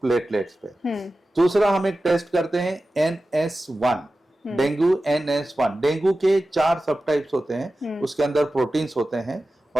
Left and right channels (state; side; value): normal; both; correlation 0.94